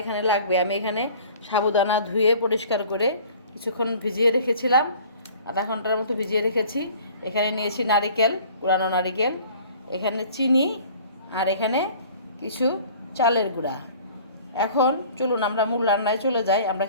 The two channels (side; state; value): both; inverted; correlation -0.49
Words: এখানে লাগবে, আমি এখানে সাবুদানা ধুয়ে পরিষ্কার করে কিছুক্ষণ ভিজিয়ে রেখেছিলাম, আধা ঘন্টার মতো ভিজিয়ে রেখেছি। এখানে নিয়েছি নারিকেল, কুড়ানো নারিকেল, এখানে চিনি, আর এখানে কিছু চালের গুঁড়া। এখন চলুন আমরা মূল রান্নায় চলে যাই, আমরা